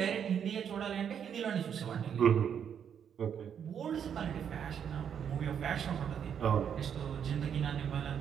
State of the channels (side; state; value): left; quieter; 8.2 dB